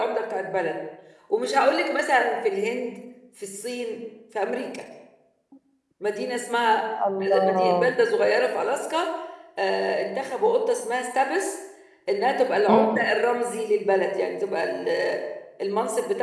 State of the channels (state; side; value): identical; both; correlation 1.00